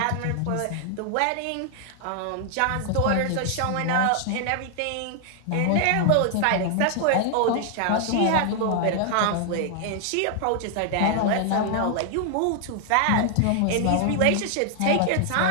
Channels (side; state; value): both; different; correlation 0.00